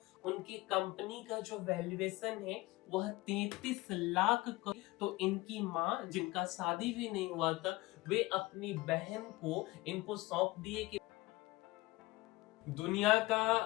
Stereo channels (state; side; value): quieter; right; 20.6 dB